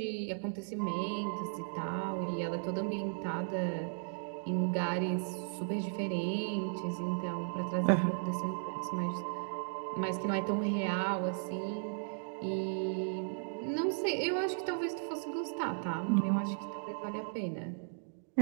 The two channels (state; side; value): silent; left; digital silence